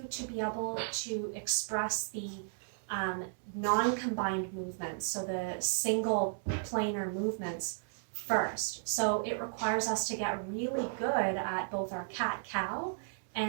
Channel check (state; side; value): silent; left; digital silence